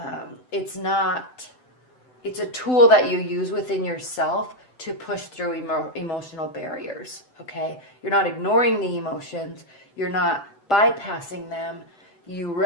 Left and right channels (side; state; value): right; late; 7.9 ms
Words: it's not, it's a tool that you use within yourself to push through emotional barriers, okay? You're not ignoring the emotions. You're not bypassing them.